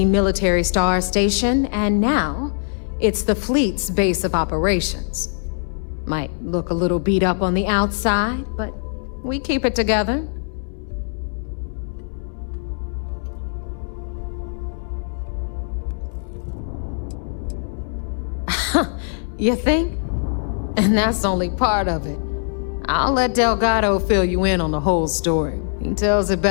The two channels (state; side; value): silent; right; digital silence